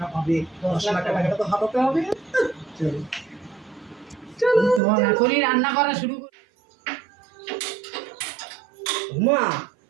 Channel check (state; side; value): drops out; left; at 4.8 s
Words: পাবে, 10 লাখ টাকা। টাকাটা তো হাতাতে হবে। চলো চলো তোমার এখনই রান্না করা শুরু করি। মা